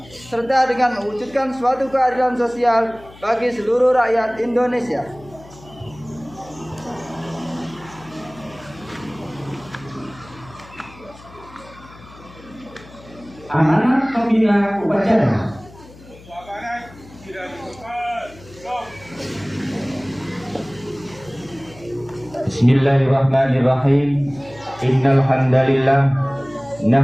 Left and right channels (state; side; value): noise; left; hum, 21 dB below the sound